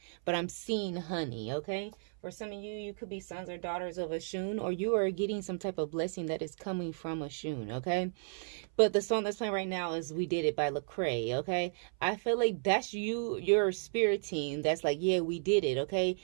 but I'm seeing honey, okay? For some of you, you could be sons or daughters of a Shun, or you are getting some type of blessing that is coming from a Shun, okay? But the song that's playing right now is We Did It by Lecrae, okay? I feel like that's you, your spirit team, that's like, yeah, we did it, okay?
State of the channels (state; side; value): silent; left; 55 dB below the other